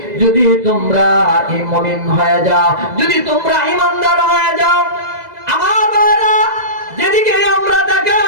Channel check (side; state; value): left; late; 2.0 ms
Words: যদি তোমরা মুমিন হয়ে যাও, যদি তোমরা ঈমানদার হয়ে যাও। আমার ভাইরা, যেদিকে আমরা